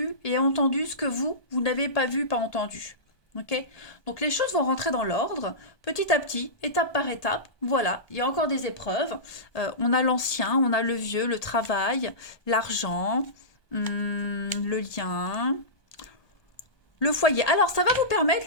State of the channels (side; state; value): right; late; 1.2 ms